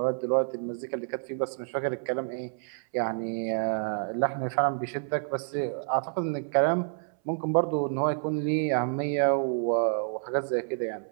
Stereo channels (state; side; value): silent; left; 59 dB below the other